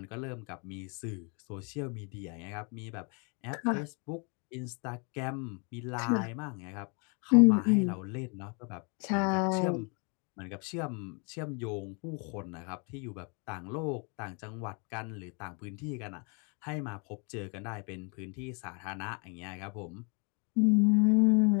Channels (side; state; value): right; quieter; 34.9 dB